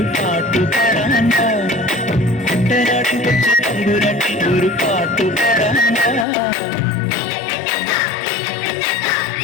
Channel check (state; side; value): drops out; right; at 6.2 s